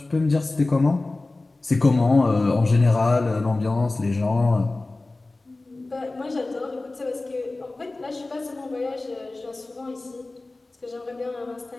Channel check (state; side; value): quieter; right; 3.1 dB